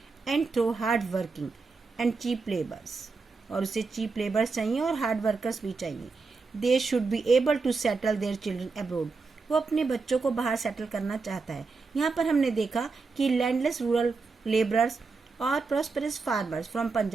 and through hard working and cheap labours. और उसे चीप लेबर्स चाहिए और हार्ड वर्कर्स भी चाहिए. They should be able to settle their children abroad. वो अपने बच्चों को बाहर सेटल करना चाहता है. यहाँ पर हमने देखा कि लैंडलेस रूरल लेबरर्स और प्रॉस्परस फार्मर्स फ्रॉम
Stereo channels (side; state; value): left; quieter; 4.3 dB